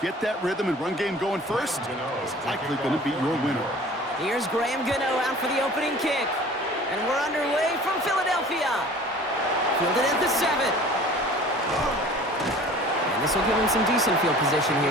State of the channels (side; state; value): both; normal; correlation 0.45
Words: get that rhythm and run game going first is likely going to be your winner. Here's Graham Gano out for the opening kick. And we're underway from Philadelphia. Fielded at the 7. And this will give him some decent field position here,